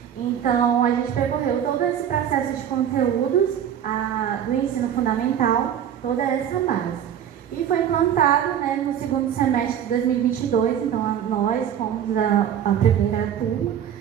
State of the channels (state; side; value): quieter; left; 9.5 dB